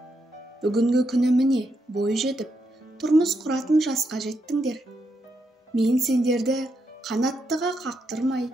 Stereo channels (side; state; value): both; normal; correlation 0.81